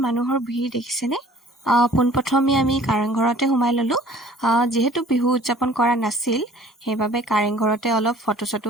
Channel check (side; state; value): both; normal; correlation 0.51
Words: মানুহৰ ভিৰ দেখিছেনে। পোনপ্ৰথমে আমি কাৰেংঘৰতে সোমাই ল'লোঁ। যিহেতু বিহু উদযাপন কৰা নাছিল, সেইবাবে কাৰেংঘৰতে অলপ ফটো চটো